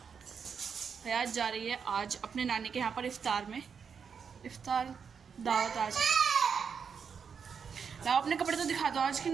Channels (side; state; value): left; quieter; 6.5 dB